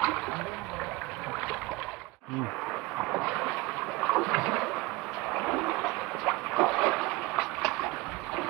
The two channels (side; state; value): left; quieter; 20.9 dB